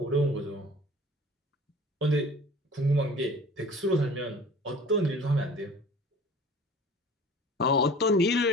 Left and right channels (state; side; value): normal; both; correlation 0.44